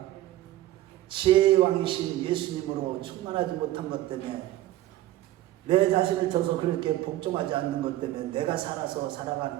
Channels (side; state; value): left; quieter; 15.0 dB